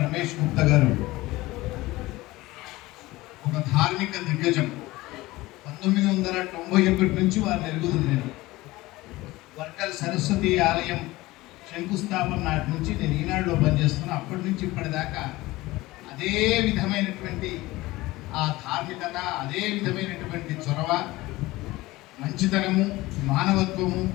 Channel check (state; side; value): quieter; right; 19.3 dB